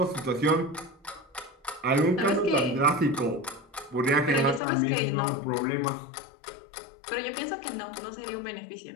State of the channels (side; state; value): right; drops out; at 4.6 s